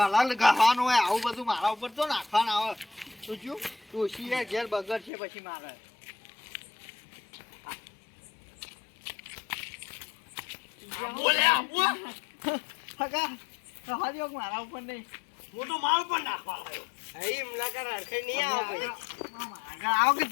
ગહવાનું હોય આવું બધું મારા ઉપર તો નાખવાનું આવે તું શું ડોશી યાર ઘેર બગડ છે પછી મારે હગા હજો મારા ઉપર નહીં હું તો માલ પણ નાખવા આવ્યો. આગળ આવો કે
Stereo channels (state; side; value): drops out; right; at 5.1 s